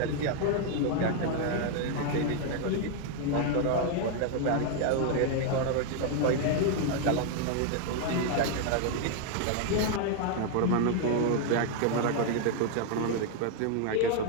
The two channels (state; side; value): different; both; correlation 0.00